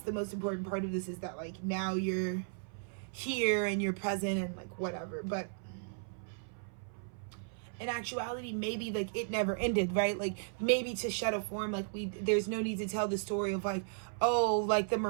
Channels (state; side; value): silent; left; 54 dB below the other